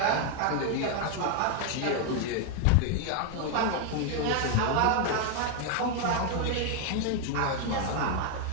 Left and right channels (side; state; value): both; different; correlation 0.01